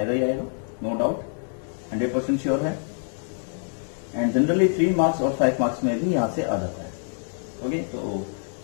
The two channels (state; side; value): silent; right; 60 dB below the other